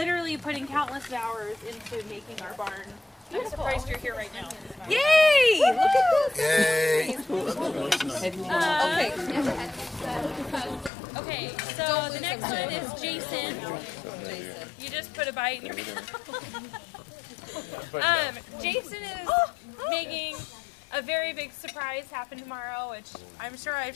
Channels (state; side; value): drops out; right; at 10.9 s